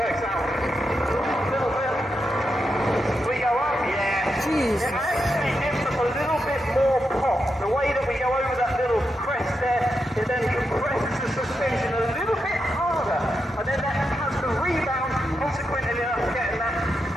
works out. A little bit. We go up, yeah. Jeez. It actually gives us a little bit more pop. The way that we go over that little crest there, it then compresses the suspension a little bit harder. And then that has the rebound, consequently us getting that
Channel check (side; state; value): both; normal; correlation 0.85